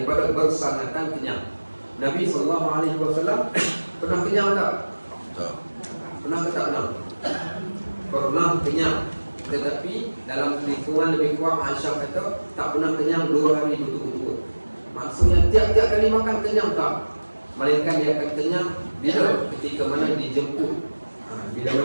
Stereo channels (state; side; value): inverted; both; correlation -1.00